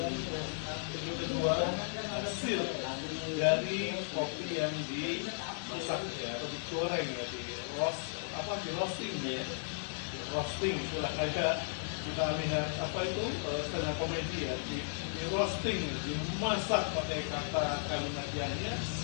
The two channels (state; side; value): silent; right; 54 dB below the other